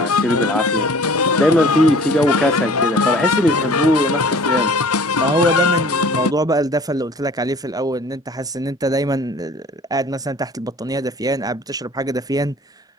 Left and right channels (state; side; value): normal; both; correlation 0.49